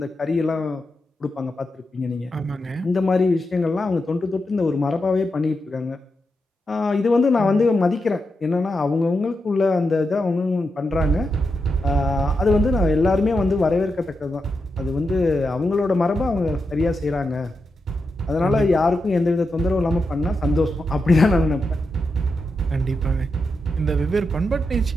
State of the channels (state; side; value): normal; both; correlation 0.87